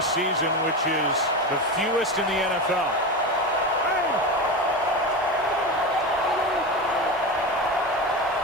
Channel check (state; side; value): normal; both; correlation 0.21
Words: season, which is the fewest in the NFL.